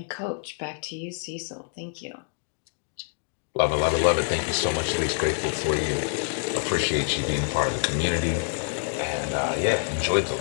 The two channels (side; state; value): right; silent; digital silence